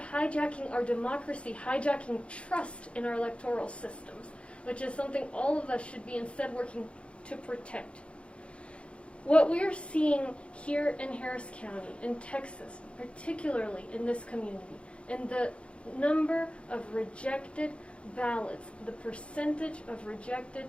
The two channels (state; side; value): late; right; 0.059 ms